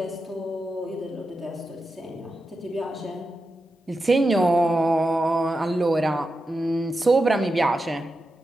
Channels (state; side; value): normal; both; correlation 0.89